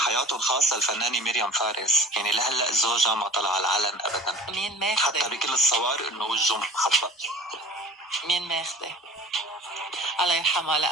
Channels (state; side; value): normal; both; correlation 0.41